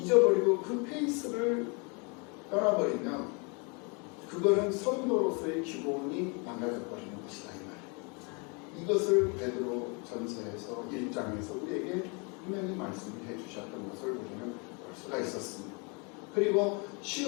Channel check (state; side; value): quieter; right; 32.9 dB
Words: 그 페이스를 떠나버리면 그거는 성도로서의 기본이 망가져버리는 것이다 이 말이에요. 이것을 베드로 전서에서 1장에서 우리에게 분명히 말씀해 주셨던 것을 우리는 볼 수가 있었습니다. 그리고